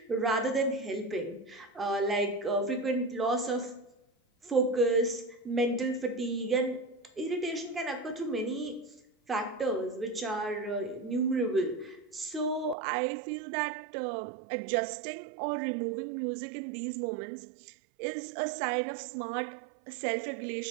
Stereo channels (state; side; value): drops out; left; at 12.8 s